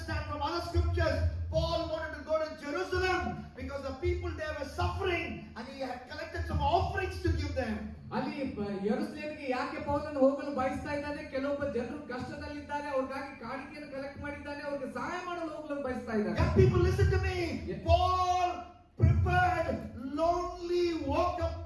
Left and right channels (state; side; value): identical; both; correlation 1.00